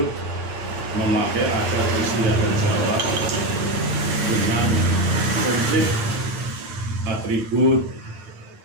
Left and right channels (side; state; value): left; late; 9.7 ms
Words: memakai adat istiadat Jawa dengan komplit atribut